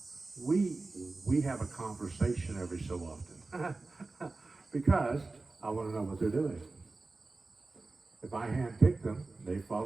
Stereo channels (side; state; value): left; quieter; 3.5 dB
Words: We have a conversation every so often because I want to know what they're doing. If I handpicked them, they